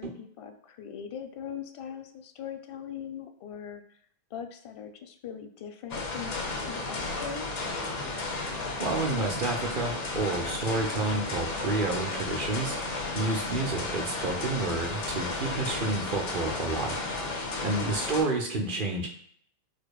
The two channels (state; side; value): late; left; 2.4 ms